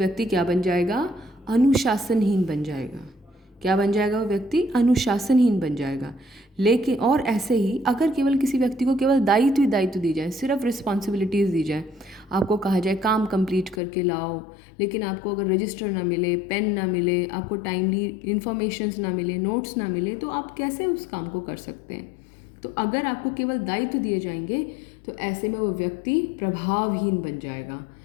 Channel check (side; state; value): right; drops out; at 13.8 s